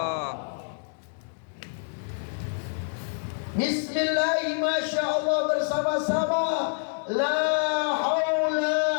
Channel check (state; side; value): silent; right; 60 dB below the other